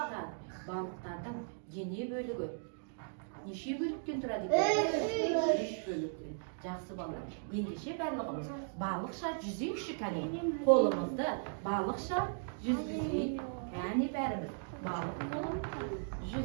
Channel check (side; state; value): left; silent; digital silence